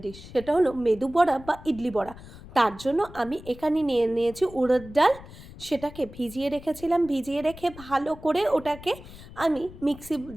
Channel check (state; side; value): noise; left; rumble, 17 dB below the sound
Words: ডিশ, সেটা হলো মেদু বড়া বা ইডলি বড়া। তার জন্য আমি এখানে নিয়ে নিয়েছি উড়দ ডাল। সেটাকে ভিজিয়ে রেখেছিলাম, ভিজিয়ে রেখে ভালো করে ওটাকে আমি মিক্সি